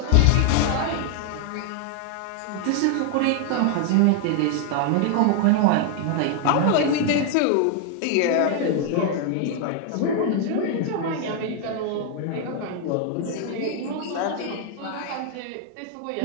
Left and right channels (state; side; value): different; both; correlation 0.00